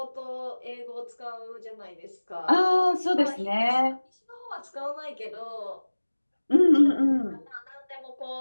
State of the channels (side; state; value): both; inverted; correlation -1.00